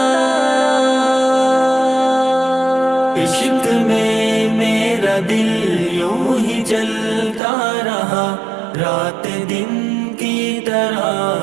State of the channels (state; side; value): drops out; left; at 7.4 s